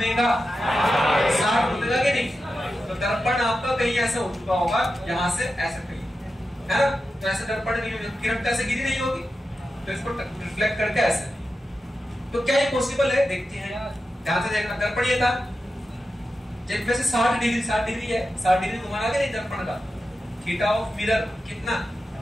60 घूमेगा कि नहीं? तो दर्पण आपका कहीं ऐसा हो चुका होगा, यहाँ से ऐसे कहीं, है ना? तो ऐसे दर्पण नहीं होगी, किरण कैसे गिरी नहीं होगी, तो इसको रिफ्लेक्ट करके ऐसे। तो क्या ये पॉसिबल है? देखते हैं, ध्यान से देखना। दर्पण ये था, जब वैसे 60 डिग्री है, 60 डिग्री घुमाना कि नहीं दर्पण का? थीटा ऑफ मिरर कितना?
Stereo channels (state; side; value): normal; both; correlation 0.91